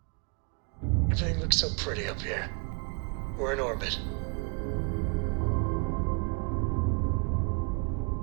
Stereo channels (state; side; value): quieter; left; 35.0 dB